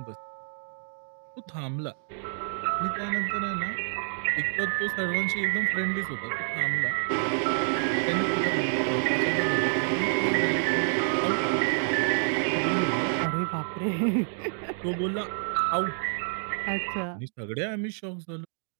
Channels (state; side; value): silent; left; 59 dB below the other